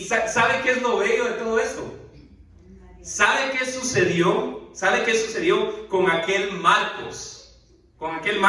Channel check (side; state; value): both; identical; correlation 1.00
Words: ¿sabe qué es lo bello de todo esto? ¿Sabe qué sucedió? ¿Sabe qué sucedió con aquel Marcos? Con aquel